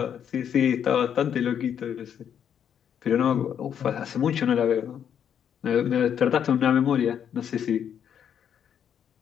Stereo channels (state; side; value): quieter; right; 8.7 dB